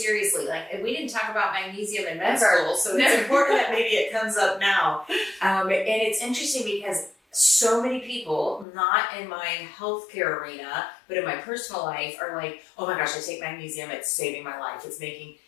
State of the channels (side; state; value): right; drops out; at 8.7 s